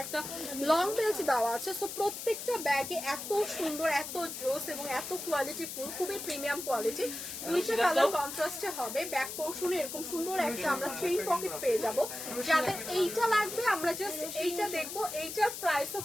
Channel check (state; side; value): noise; left; hiss, 7 dB below the sound